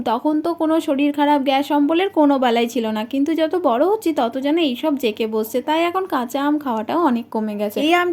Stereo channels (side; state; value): both; identical; correlation 1.00